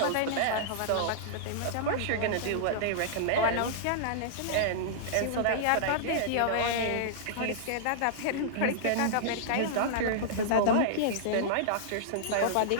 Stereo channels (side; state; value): both; different; correlation -0.02